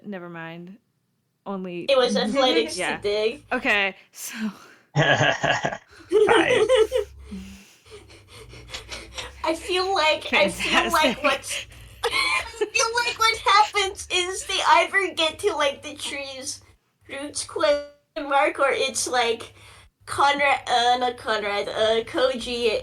Never mind. Only. It was athletics Yeah. to dig. Okay, so. Five. I feel like Fantastic. what's I feel like what happens is they either get to like the tree's roots question mark, or it's like Koji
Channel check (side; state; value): both; identical; correlation 1.00